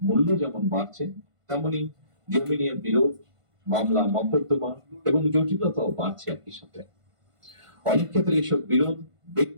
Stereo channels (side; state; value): left; late; 1.5 ms